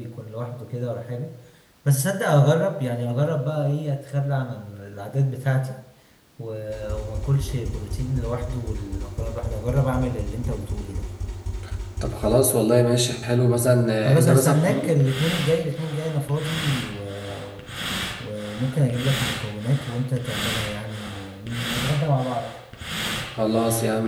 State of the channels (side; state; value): both; identical; correlation 1.00